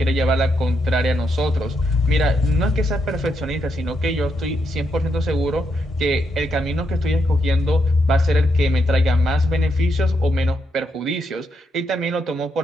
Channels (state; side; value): normal; both; correlation 0.80